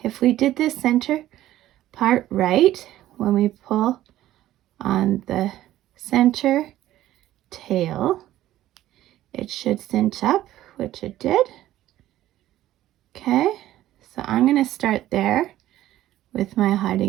If we did this center part right, when we pull on the center tail, it should cinch up, which it did. Okay, so I'm gonna start there with my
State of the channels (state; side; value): quieter; left; 14.0 dB